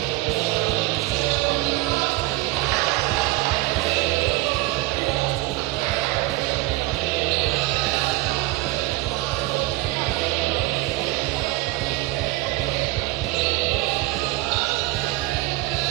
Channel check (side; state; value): left; quieter; 19.2 dB